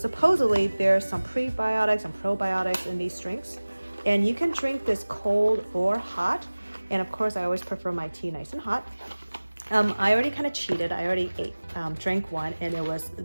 there's some prebiotics and probiotics in these drinks, and you can drink this cold or hot. And of course I always prefer my tea nice and hot. I already kind of cheated. I already drank one, and it was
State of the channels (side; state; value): both; inverted; correlation -1.00